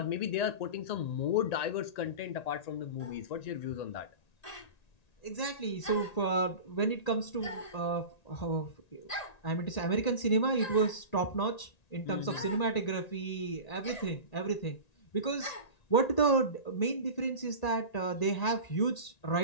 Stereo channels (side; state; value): right; late; 1.9 ms